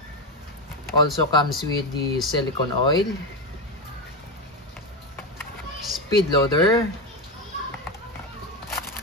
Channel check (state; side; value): normal; both; correlation 0.13